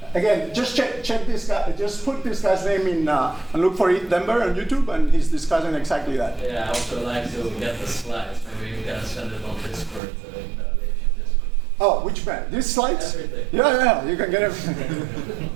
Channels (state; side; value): drops out; left; at 10.0 s